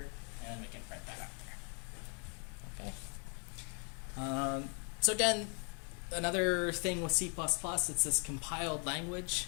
and we can print that out there. Okay. So again, another thing with C++, it's this compiled language.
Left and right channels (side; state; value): right; quieter; 38.4 dB